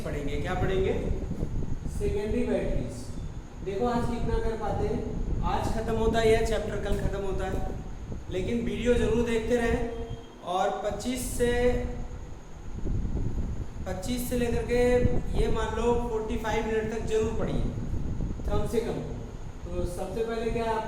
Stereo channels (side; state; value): both; identical; correlation 1.00